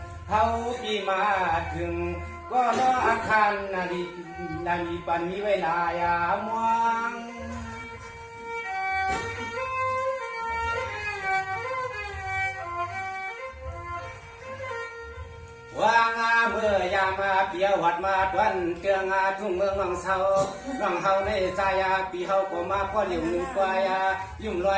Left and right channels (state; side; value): identical; both; correlation 1.00